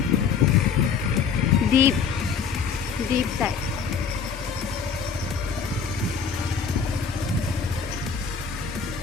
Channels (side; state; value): right; quieter; 6.1 dB